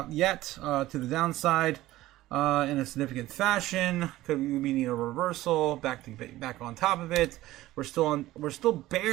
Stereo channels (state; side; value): quieter; left; 16.3 dB